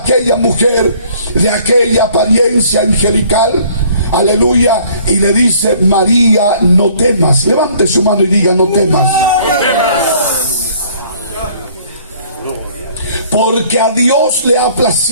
mujer de aquella apariencia angelical, aleluya, y le dice: María, no temas. Levante su mano y diga: no temas. Porque a Dios le ha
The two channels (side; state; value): both; inverted; correlation -0.57